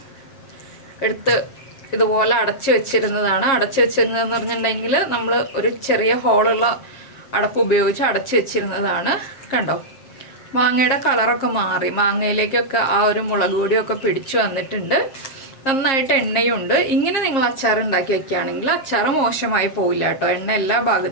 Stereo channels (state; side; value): late; right; 7.5 ms